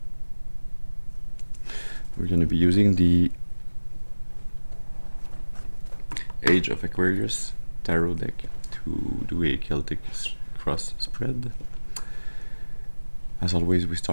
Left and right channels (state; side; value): inverted; both; correlation -1.00